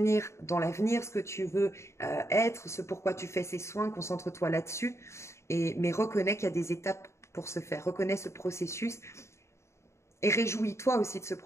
dans l'avenir, ce que tu veux être, ce pourquoi tu fais ces soins. Concentre-toi là-dessus. Mais reconnais qu'il y a des étapes pour se faire. Reconnais ce processus et réjouis-toi aussi de ce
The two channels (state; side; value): late; right; 0.13 ms